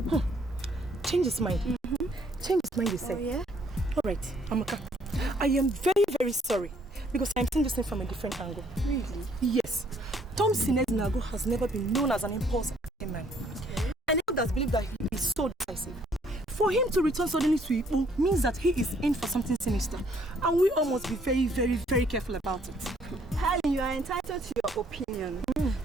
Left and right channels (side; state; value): both; normal; correlation 0.64